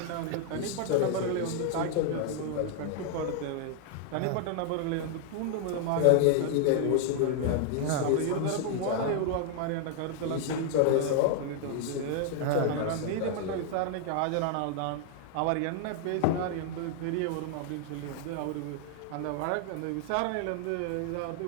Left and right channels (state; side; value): different; both; correlation 0.00